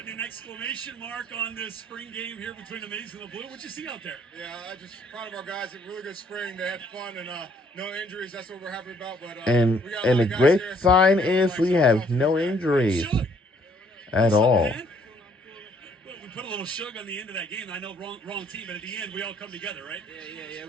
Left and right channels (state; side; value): normal; both; correlation 0.64